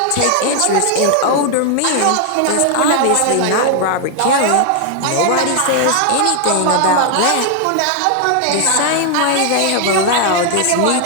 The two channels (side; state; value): both; different; correlation 0.00